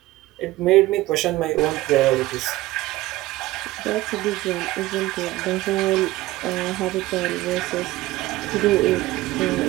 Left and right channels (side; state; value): left; quieter; 17.8 dB